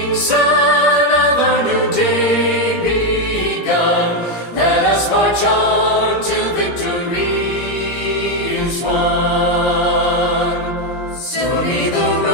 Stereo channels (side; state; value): right; late; 17 ms